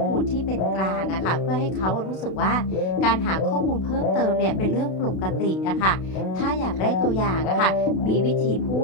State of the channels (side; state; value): right; late; 32 ms